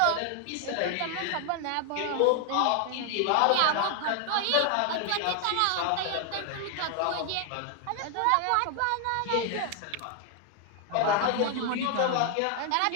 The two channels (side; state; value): both; different; correlation 0.00